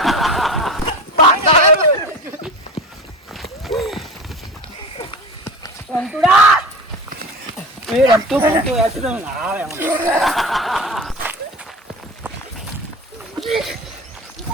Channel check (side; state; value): both; normal; correlation 0.32